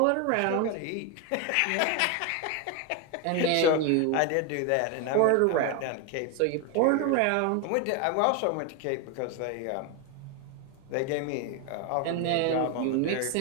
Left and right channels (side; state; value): both; different; correlation 0.01